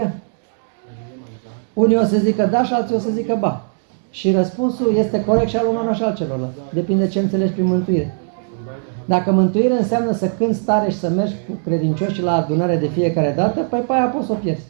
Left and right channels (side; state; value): left; silent; digital silence